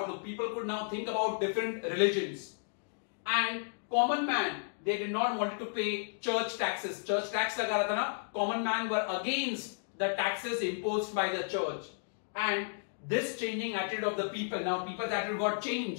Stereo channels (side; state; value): right; silent; digital silence